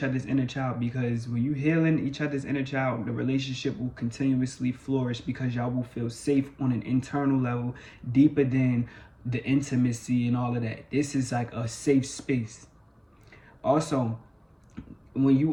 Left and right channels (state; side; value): identical; both; correlation 1.00